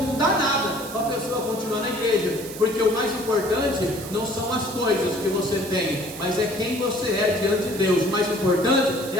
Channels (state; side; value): noise; right; hiss, 13 dB below the sound